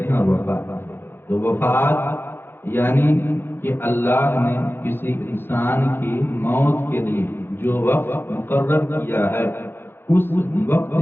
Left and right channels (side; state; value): right; late; 0.10 ms